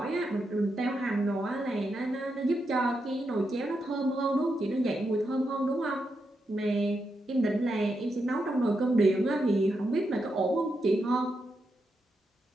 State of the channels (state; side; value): normal; both; correlation 0.84